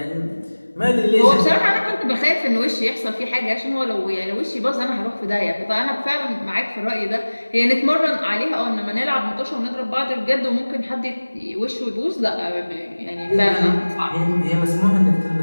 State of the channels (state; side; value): inverted; both; correlation -1.00